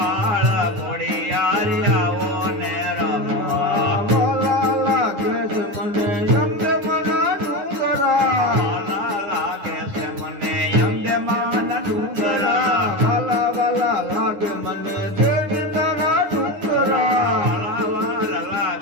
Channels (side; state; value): left; late; 9.8 ms